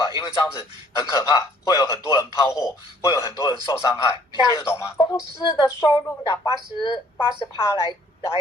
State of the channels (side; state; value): both; normal; correlation 0.60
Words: 因为这样子很可怕，会有很多人抛货，会有很多人受伤害。你听得懂吗？公司的收入的80%